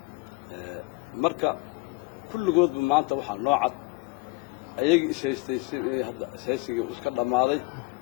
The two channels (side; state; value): right; quieter; 23.6 dB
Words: marka kulligoodba maanta waxaa noocad ayaga ishaystay hadda isaysiga iska dhamaaday